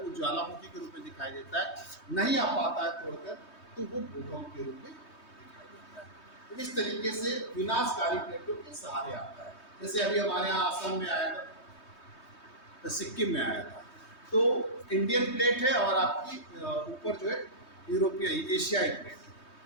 वो ज्वालामुखी के रूप में दिखाई देता है, नहीं आ पाता है तोड़कर तो वो भूकंप के रूप में दिखाई देता है। तो इस तरीके से विनाशकारी प्लेटों के सहारे आता है। जैसे अभी हमारे यहाँ आसाम में आया था, तो सिक्किम में आया था, तो इंडियन प्लेट है और आपकी ऊपर जो है यूरोपीय एशियाई प्लेट है।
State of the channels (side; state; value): right; late; 3.2 ms